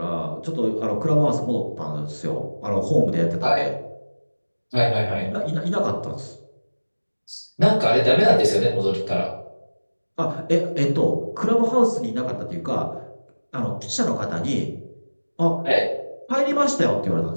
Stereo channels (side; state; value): both; inverted; correlation -1.00